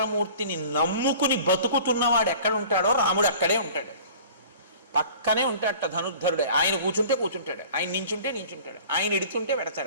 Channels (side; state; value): both; inverted; correlation -0.45